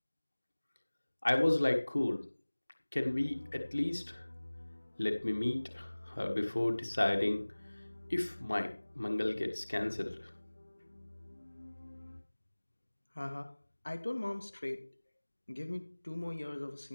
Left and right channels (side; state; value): both; inverted; correlation -1.00